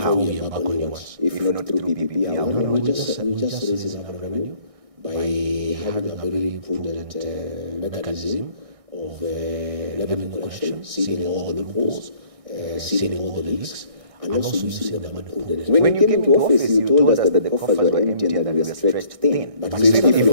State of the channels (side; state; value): left; late; 1.6 ms